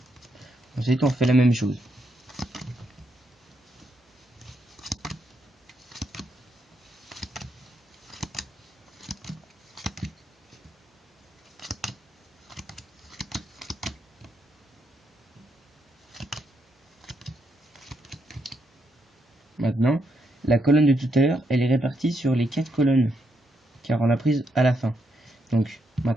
Ensuite, on fait la même chose. Maintenant, la colonne de tout à l'heure, elle est répartie sur les 4 colonnes, car on l'a prise à la fin. Donc,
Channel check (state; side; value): normal; both; correlation 0.79